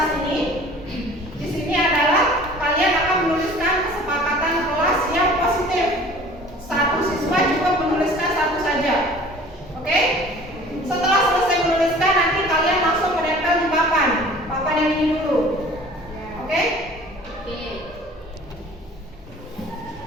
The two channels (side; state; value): both; normal; correlation 0.47